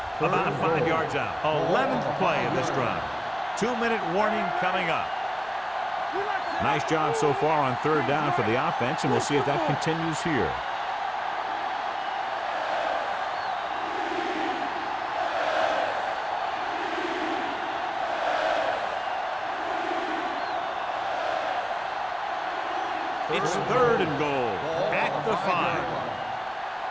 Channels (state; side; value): identical; both; correlation 1.00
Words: About 5 yards out. 11th play of this drive. 2-minute warning coming up. Nice job so far on third down for the offense, and we'll see if that continues here. It's third and goal at the 5.